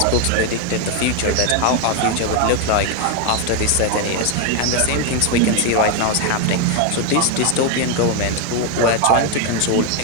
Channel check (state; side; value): different; both; correlation 0.01